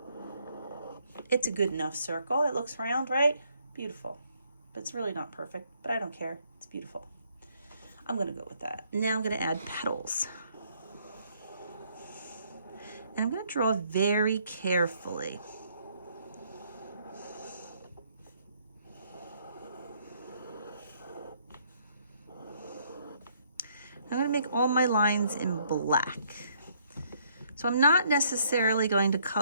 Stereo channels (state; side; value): inverted; both; correlation -0.68